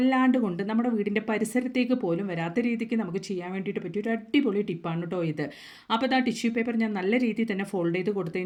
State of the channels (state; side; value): identical; both; correlation 1.00